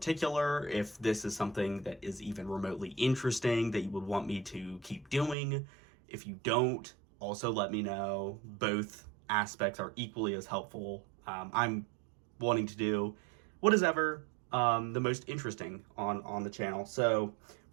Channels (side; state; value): left; drops out; at 5.4 s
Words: if this is something that is even remotely interesting that you would want me to keep doing. If you don't, also let me know. Both aspects are equally as helpful. I'm wanting to do what is ever the most interesting on the channel. So